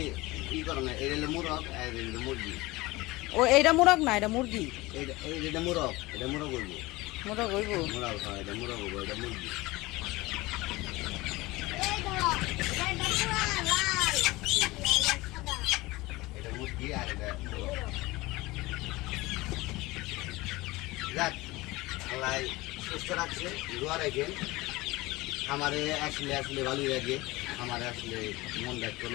ই করে না এটা হলো মুরগ আর এটা হলো মুরগি ও এইটা মোরগ না এটা মুরগি। এটা মুরগ হইব মোরগ হইব। মুরগ হয় এটা মুরগ হইব এটা মুরগি এই ধরো এটা পুরা লাল সাদা এটা মুরগি আর এটা মুরগ যাক আল্লাহ সুস্থ রাখছে দোয়া রাখেন খামারে আসলে আসলে ভালোই লাগে খামারে আসলে মন রাখতে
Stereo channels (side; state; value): right; quieter; 20.8 dB